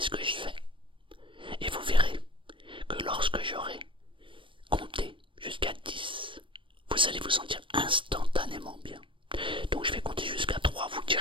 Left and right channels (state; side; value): late; left; 0.25 ms